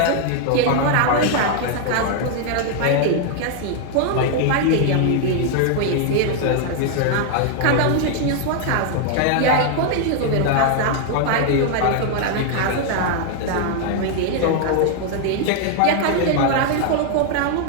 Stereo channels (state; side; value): different; both; correlation 0.00